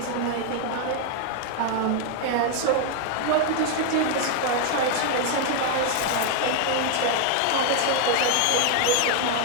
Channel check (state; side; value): different; both; correlation 0.00